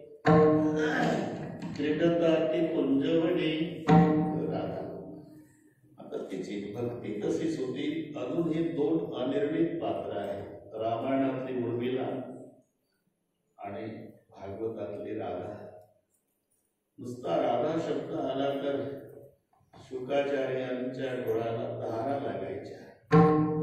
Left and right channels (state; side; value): identical; both; correlation 1.00